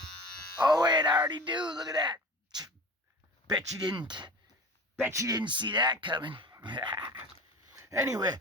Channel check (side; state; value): both; normal; correlation 0.37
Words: Oh wait, I already do. Look at that. Bet you didn't see that coming. Anyway,